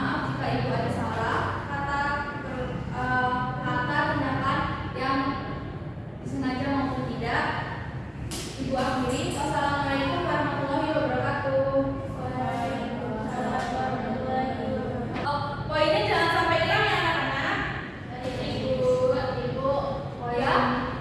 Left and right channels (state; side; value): identical; both; correlation 1.00